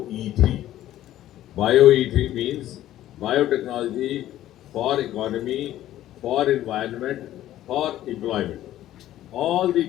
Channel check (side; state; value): right; quieter; 13.3 dB